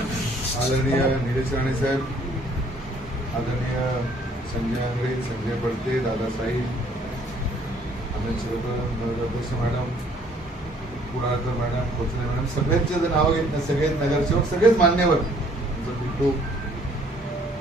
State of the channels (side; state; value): both; normal; correlation 0.60